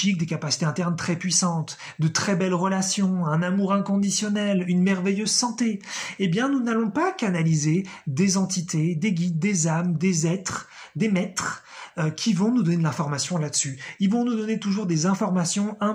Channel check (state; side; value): identical; both; correlation 1.00